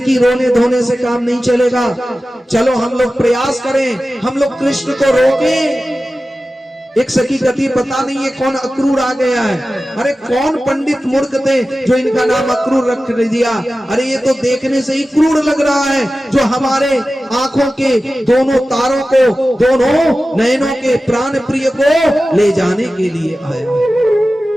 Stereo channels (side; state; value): both; normal; correlation 0.95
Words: रोने धोने से काम नहीं चलेगा, चलो हम लोग प्रयास करें, हम लोग कृष्ण को रोकें। एक सखी कहती, पता नहीं ये कौन अक्रूर आ गया है। अरे कौन पंडित मूर्ख थे जो इनका नाम अक्रूर रख दिया। अरे ये तो देखने से ही क्रूर लग रहा है, जो हमारे आंखों के दोनों तारों को, दोनों नयनों के प्राण प्रिय को ले जाने के लिए आया।